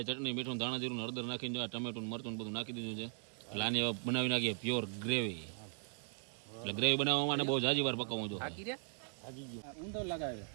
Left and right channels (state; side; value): silent; left; 52 dB below the other